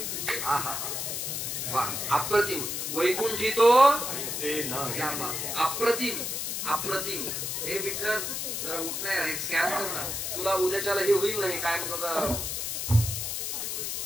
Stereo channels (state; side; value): noise; left; hiss, 3 dB below the sound